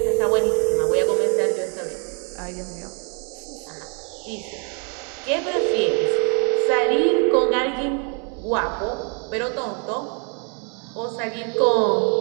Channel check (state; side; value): quieter; left; 38.1 dB